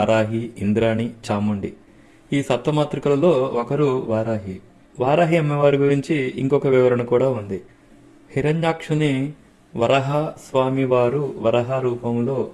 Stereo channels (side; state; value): both; identical; correlation 1.00